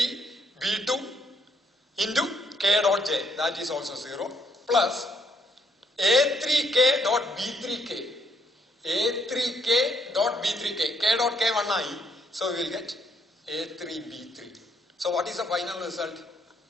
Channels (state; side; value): normal; both; correlation 0.71